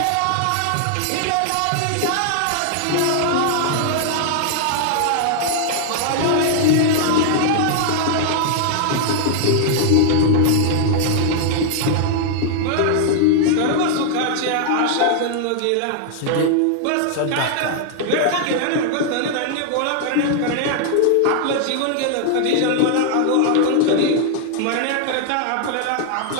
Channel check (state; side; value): different; both; correlation 0.00